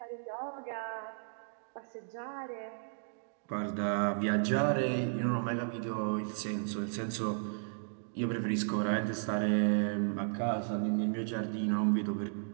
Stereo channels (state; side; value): silent; left; digital silence